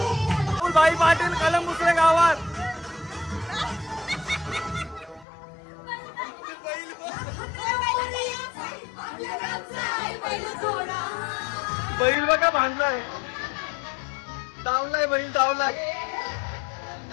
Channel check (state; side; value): drops out; right; at 5.2 s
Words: भाई पाटील कलम दुसऱ्या गावात. बैल बघा बांधलाय. धावलाय बैल धावलाय.